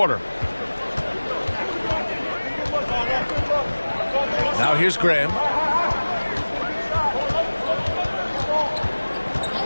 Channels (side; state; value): both; inverted; correlation -1.00